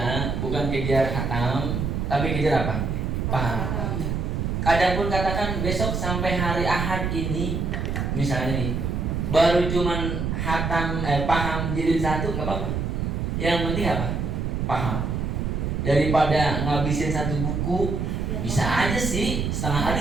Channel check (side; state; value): right; noise; rumble, 1 dB below the sound